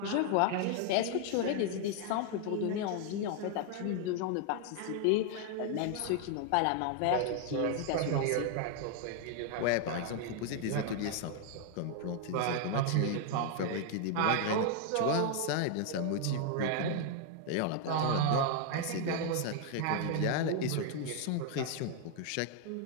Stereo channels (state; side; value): different; both; correlation 0.00